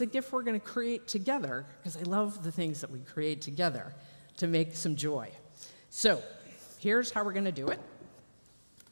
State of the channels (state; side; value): inverted; both; correlation -1.00